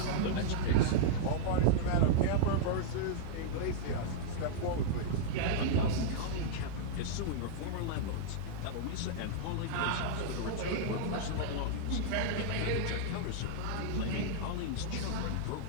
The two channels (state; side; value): different; both; correlation -0.02